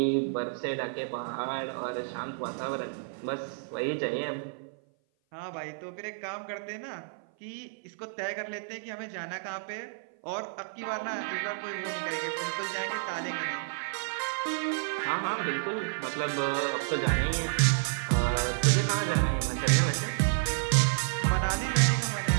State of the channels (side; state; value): left; silent; 55 dB below the other